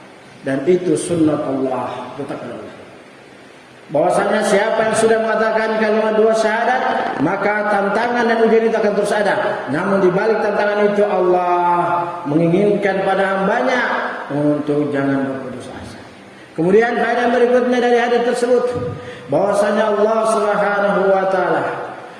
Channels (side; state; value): both; identical; correlation 1.00